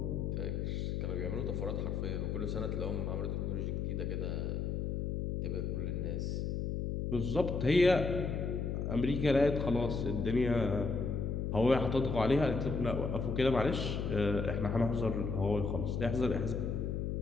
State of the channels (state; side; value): noise; left; hum, 1 dB below the sound